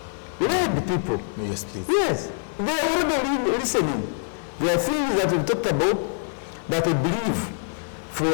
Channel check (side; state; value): right; silent; 62 dB below the other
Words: led the people. Yes, please. Yes, they are already listening. There are things that we've talked about that I believe